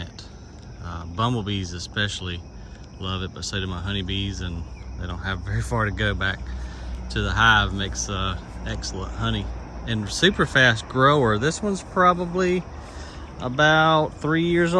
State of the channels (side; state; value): both; identical; correlation 1.00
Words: Bumblebees especially love it, but so do my honeybees, and they don't have very far to go back to the hive. Makes excellent honey and super fast grower. This one's probably about 3 years